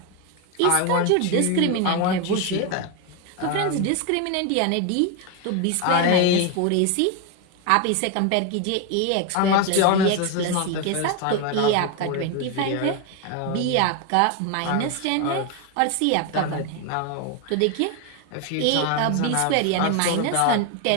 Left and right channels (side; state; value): both; different; correlation 0.02